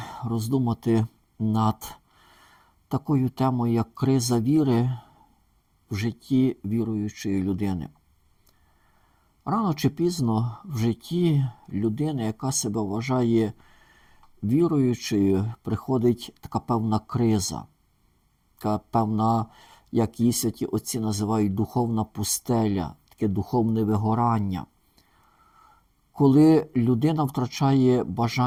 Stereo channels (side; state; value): both; identical; correlation 1.00